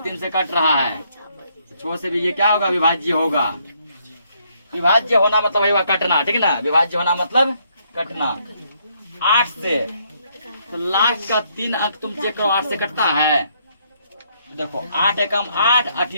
3 से कट रहा है, 6 से भी ये क्या होगा, विभाज्य होगा। विभाज्य होना मतलब है कटना, ठीक है ना, विभाज्य होना मतलब कटना। 8 से, तो लास्ट का 3 अंक तुम चेक करो, 8 से कटता है, देखो 8 एकम 8 8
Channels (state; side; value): inverted; both; correlation -0.71